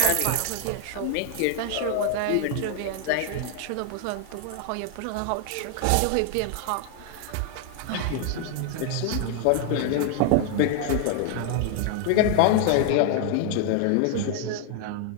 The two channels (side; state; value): both; different; correlation 0.00